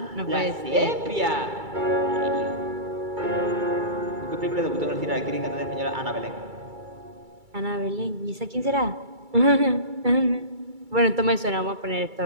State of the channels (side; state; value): left; late; 2.3 ms